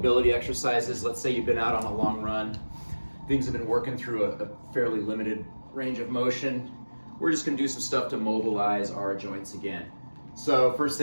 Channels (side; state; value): both; inverted; correlation -1.00